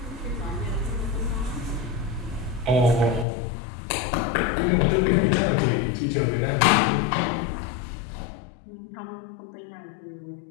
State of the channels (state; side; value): drops out; right; at 3.2 s